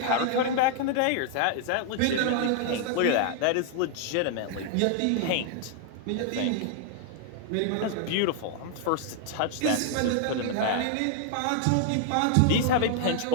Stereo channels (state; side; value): different; both; correlation 0.00